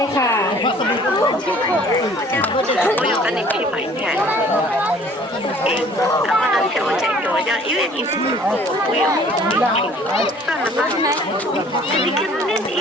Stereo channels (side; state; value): both; normal; correlation 0.53